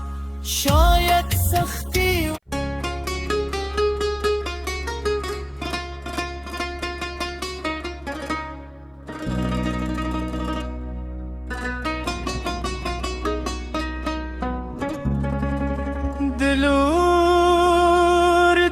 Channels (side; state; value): both; identical; correlation 1.00